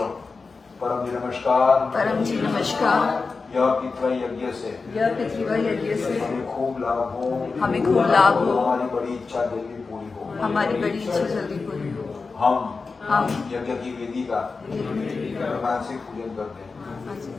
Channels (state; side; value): quieter; right; 4.4 dB